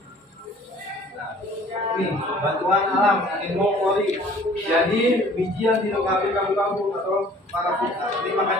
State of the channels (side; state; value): both; normal; correlation 0.52